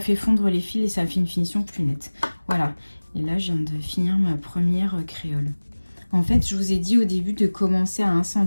fait fondre les fils et ça fait une finition plus nette. Voilà. Et là, je viens de finir ma première créole. En fait, je vous ai dit au début de commencer à 1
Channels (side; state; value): both; inverted; correlation -1.00